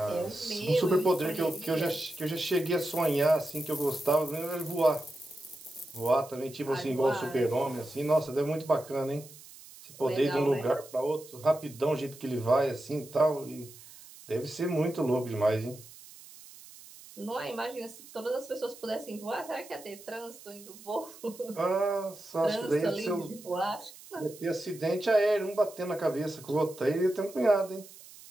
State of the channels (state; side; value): noise; right; hiss, 19 dB below the sound